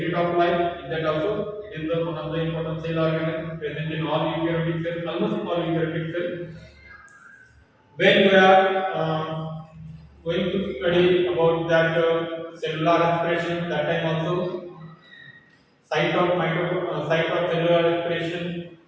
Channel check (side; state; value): both; identical; correlation 1.00